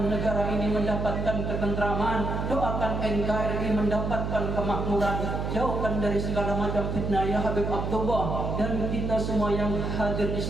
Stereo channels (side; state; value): right; noise; hum, 2 dB below the sound